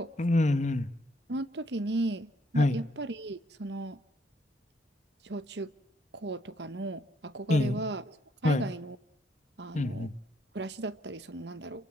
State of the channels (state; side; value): normal; both; correlation 0.71